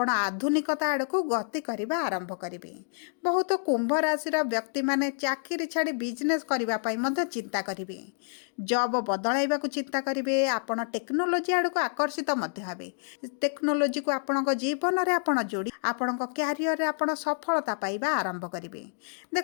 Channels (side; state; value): right; silent; digital silence